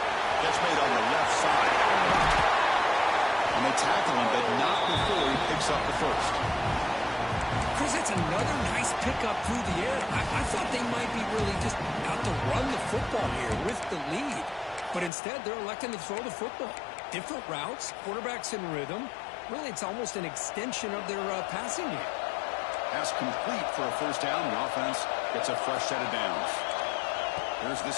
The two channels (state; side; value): drops out; right; at 15.1 s